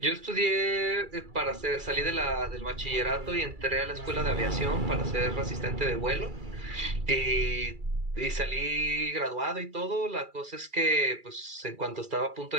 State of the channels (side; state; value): left; late; 2.4 ms